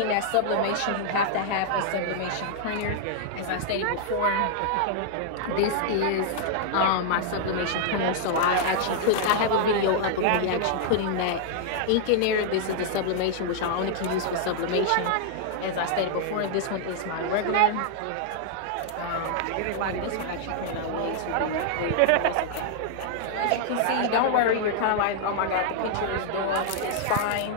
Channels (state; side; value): different; both; correlation -0.01